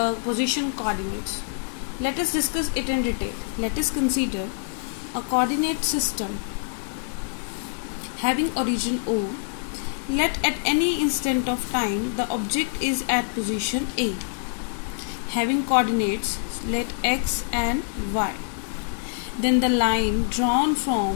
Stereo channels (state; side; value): silent; right; digital silence